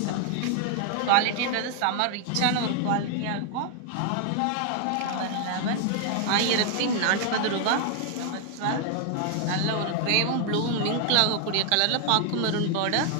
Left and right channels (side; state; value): both; different; correlation 0.00